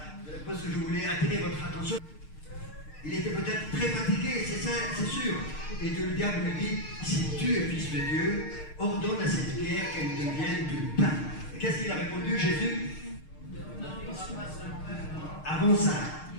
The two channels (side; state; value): right; late; 6.5 ms